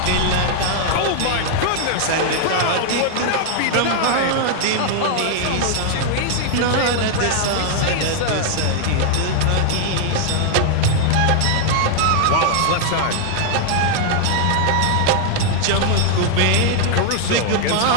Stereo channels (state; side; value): different; both; correlation 0.00